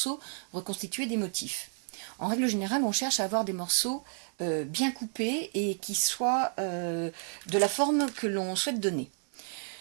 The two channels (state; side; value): silent; left; 57 dB below the other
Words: reconstituer des motifs. En règle générale, on cherche à avoir des morceaux bien coupés et qui soient de la forme que l'on souhaite donner.